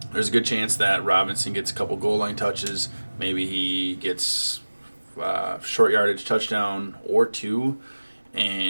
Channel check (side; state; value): both; inverted; correlation -1.00